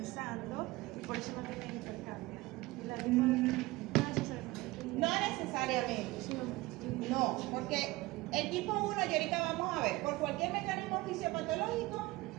y por eso no tiene hipercambia. Y la no necesariamente. No necesariamente. No, porque el tipo 1, y ahorita vamos a ver, por cualquier mecanismo fisiopatológico,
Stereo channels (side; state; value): left; quieter; 20.2 dB